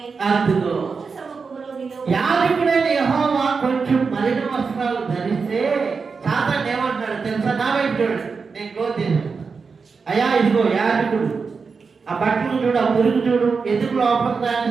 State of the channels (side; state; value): left; quieter; 5.0 dB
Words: సముఖములో నిలవబడి, యాజకుడైన యెహోవా కొంచెం మలిన వస్త్రాలు ధరిస్తే సాతాను ఏమంటాడు తెలుసా? నా వైపు చూడండి, నేను క్లోజ్ చేశాను. అయ్యా ఇదిగో యాజకుడు, ఆ బట్టలు చూడు, ఆ మురుగు చూడు, ఎందుకు లోపల